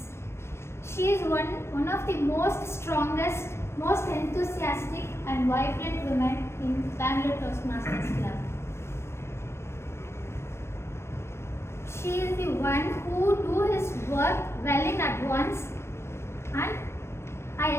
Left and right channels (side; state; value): right; late; 0.13 ms